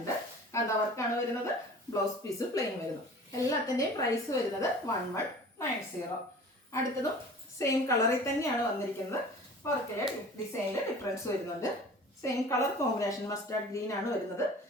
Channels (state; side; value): normal; both; correlation 0.43